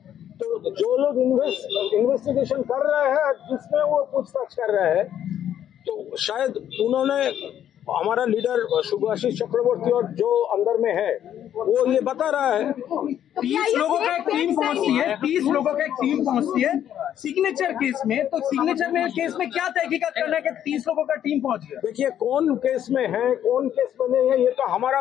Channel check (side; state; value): right; quieter; 10.4 dB